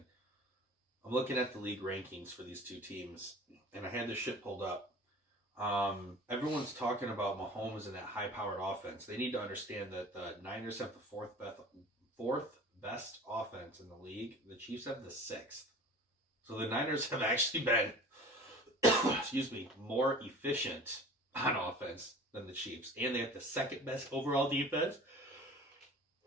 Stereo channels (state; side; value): normal; both; correlation 0.42